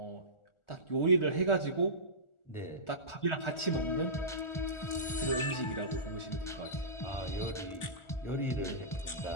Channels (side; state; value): right; late; 1.4 ms